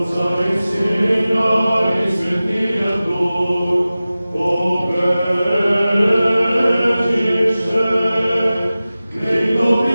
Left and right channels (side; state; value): both; inverted; correlation -0.96